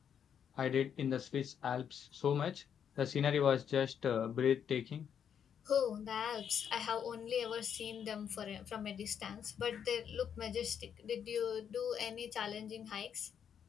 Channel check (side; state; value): right; quieter; 8.2 dB